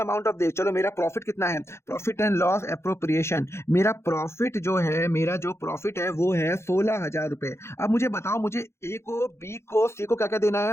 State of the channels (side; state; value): right; late; 0.13 ms